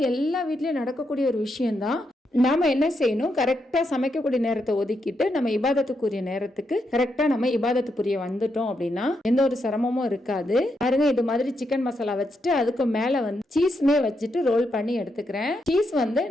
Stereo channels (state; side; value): normal; both; correlation 0.81